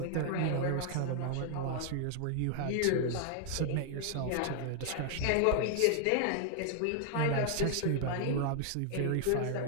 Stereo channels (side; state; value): both; different; correlation 0.00